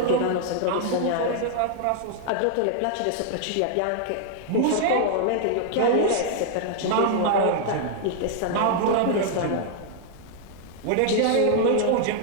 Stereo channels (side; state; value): both; different; correlation -0.01